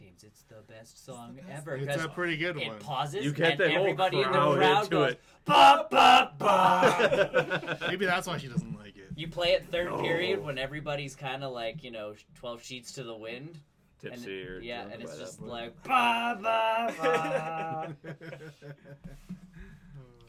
it's the best song ever. It's 'cause a pretty good it one. pauses, You get and the whole everybody in the crowd crowd into goes, it. ba, ba, ba. Maybe that's why she doesn't like it. You play it third No. period when everybo's kind of like, 12 sheets to the wind. Tipsy and or yeah, drunk and it's by that just point. like ba ba ba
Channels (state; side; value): identical; both; correlation 1.00